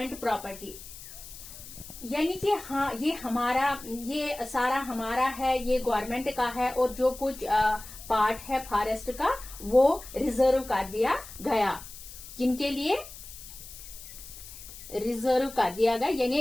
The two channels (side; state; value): left; noise; hiss, 15 dB below the sound